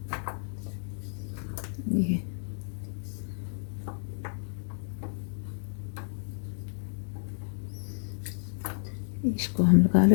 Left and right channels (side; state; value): right; silent; digital silence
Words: इसको हम लगा